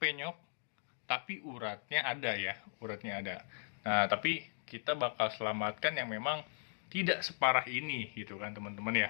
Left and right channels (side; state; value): right; silent; digital silence